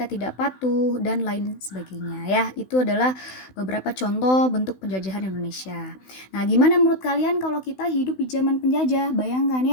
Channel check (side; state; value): right; late; 16 ms